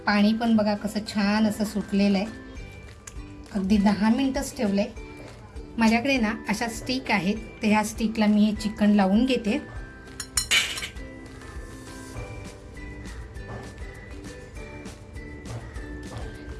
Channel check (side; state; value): both; identical; correlation 1.00